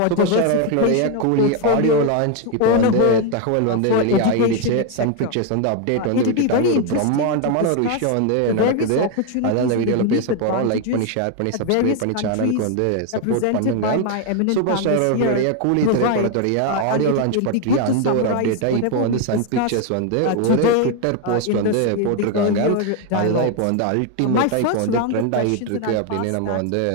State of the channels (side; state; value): both; different; correlation 0.01